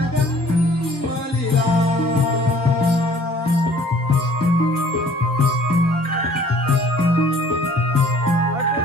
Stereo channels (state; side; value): normal; both; correlation 0.54